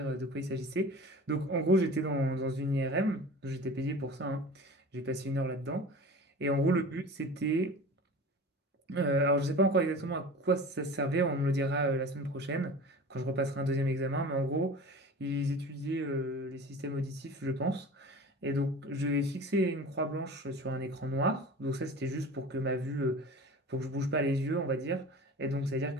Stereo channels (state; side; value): normal; both; correlation 0.37